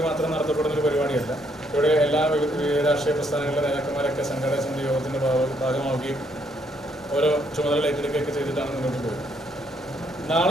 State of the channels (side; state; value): both; normal; correlation 0.71